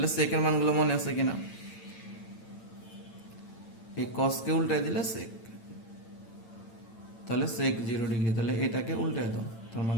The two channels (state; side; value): late; right; 8.9 ms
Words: সেকের মানগুলো মনে আছে কিনা? এই কসকে উল্টায় দিলে সেক, তাহলে সেক 0 ডিগ্রি, তাহলে এটাকে উল্টায় দাও, তার